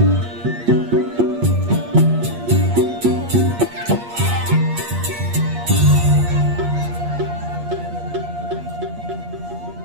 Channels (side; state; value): left; late; 8.5 ms